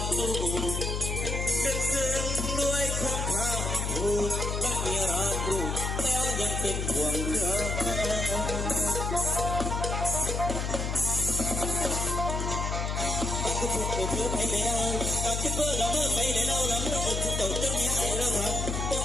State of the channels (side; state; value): left; noise; hum, 1 dB below the sound